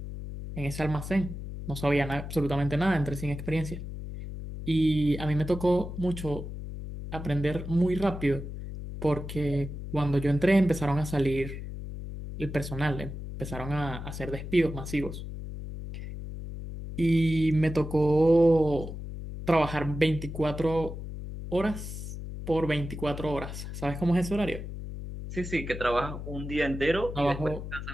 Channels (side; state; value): left; noise; hum, 8 dB below the sound